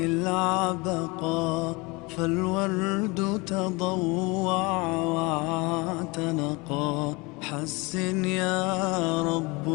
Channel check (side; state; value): right; quieter; 26.0 dB